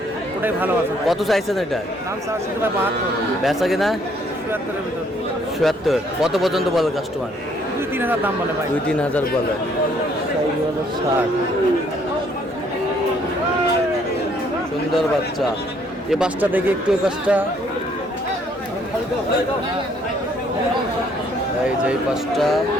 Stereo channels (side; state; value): both; normal; correlation 0.65